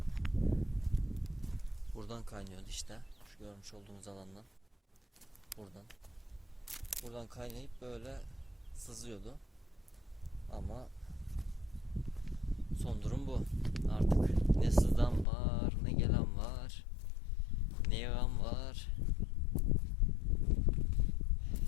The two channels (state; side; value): drops out; right; at 15.2 s